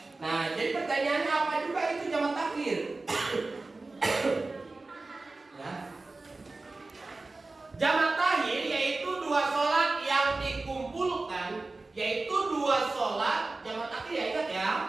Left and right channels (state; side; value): quieter; left; 3.4 dB